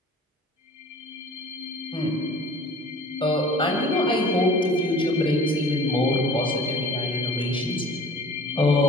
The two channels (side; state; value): both; normal; correlation 0.46